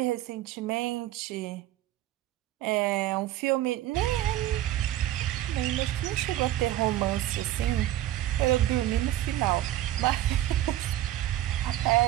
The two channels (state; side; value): quieter; left; 14.0 dB